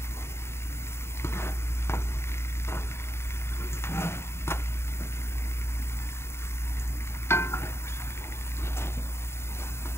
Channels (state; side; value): late; right; 0.12 ms